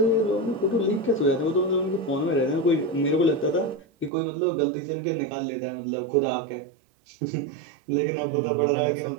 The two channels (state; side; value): drops out; left; at 4.1 s